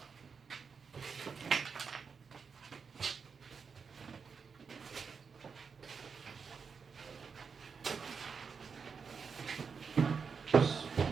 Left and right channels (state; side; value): quieter; left; 5.7 dB